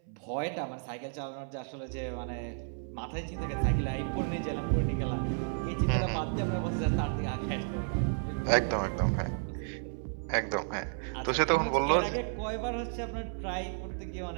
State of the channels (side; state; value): left; silent; 56 dB below the other